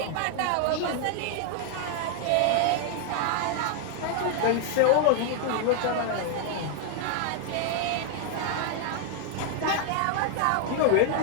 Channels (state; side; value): different; both; correlation 0.00